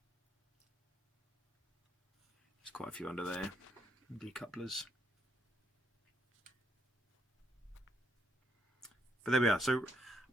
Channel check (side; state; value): both; normal; correlation 0.76